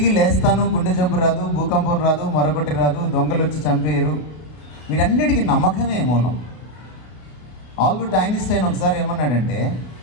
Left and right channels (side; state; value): right; late; 32 ms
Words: లేస్తాను, గుండె జబ్బు రాదు, భూకంపం రాదు, మరొకటి రాదు, దొంగలు వచ్చి చంపేయరు, వీటన్నిటికీ నమ్మకమే మూలం. ఆల్బర్ట్ ఐన్స్టైన్ ఒకసారి ఏమన్నాడంటే,